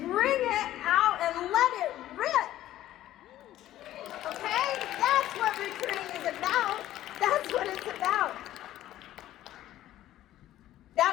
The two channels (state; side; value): quieter; right; 13.6 dB